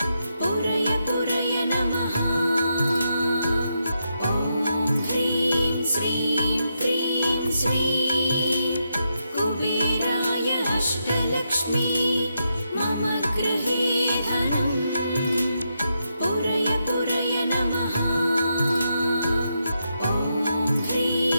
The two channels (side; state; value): both; inverted; correlation -0.83